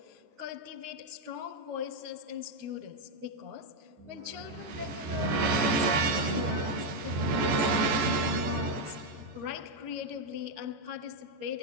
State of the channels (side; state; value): left; late; 14 ms